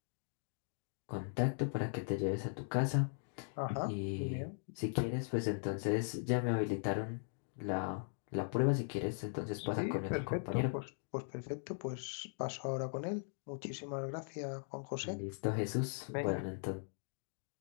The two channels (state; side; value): silent; right; digital silence